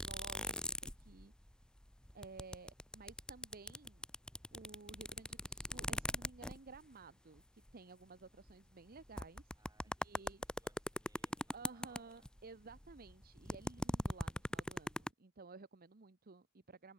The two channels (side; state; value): both; normal; correlation 0.46